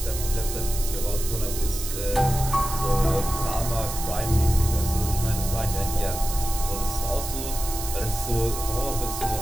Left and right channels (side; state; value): right; noise; hiss, 7 dB below the sound